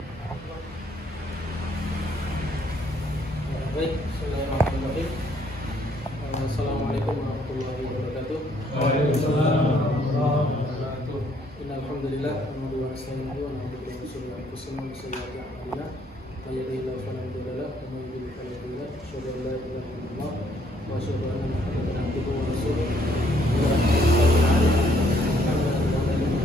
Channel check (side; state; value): both; normal; correlation 0.67